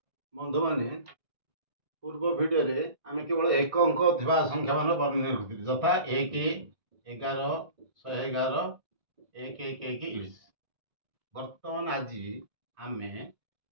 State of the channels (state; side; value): late; left; 1.6 ms